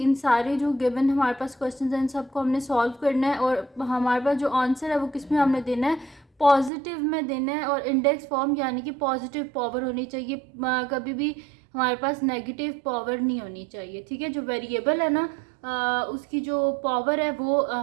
सारे जो गिवन हमारे पास क्वेश्चन हैं इन सबको हमने सॉल्व करना है, और हमारे पास जो आंसर है वो किस में हमने देना है, पॉजिटिव में देना है। और इंडेक्स फॉर्म यानी कि पॉजिटिव पावर होनी चाहिए, कभी भी हमारे पास नेगेटिव पावर नहीं होनी चाहिए। ठीक है, जो वेरिएबल है ना उसकी जो पावर है वो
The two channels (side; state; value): left; drops out; at 6.7 s